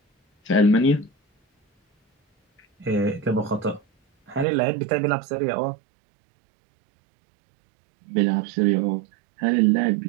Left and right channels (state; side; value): drops out; left; at 4.5 s